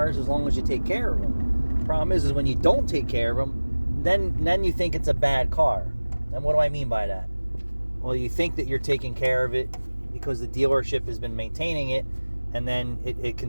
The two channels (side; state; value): both; inverted; correlation -1.00